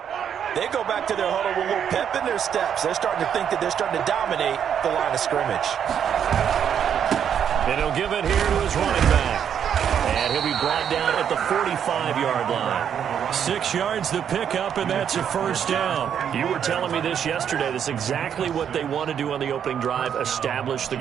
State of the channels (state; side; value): quieter; left; 8.5 dB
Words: they go back to their huddle with a little pep in their steps. They're starting to think that they're starting to dominate the line of scrimmage. And he'll give it here to his running back. And he'll be brought down at the 45-yard line. 6 yards to pick up, and that's a 1st down. You were telling me this yesterday. That's exactly what they want to do on the opening drive, establish the